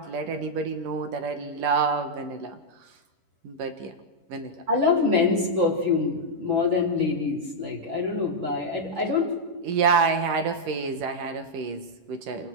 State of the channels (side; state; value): left; late; 11 ms